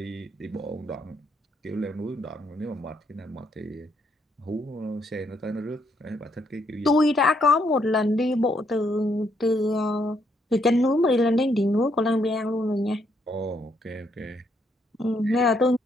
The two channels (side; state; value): both; normal; correlation 0.73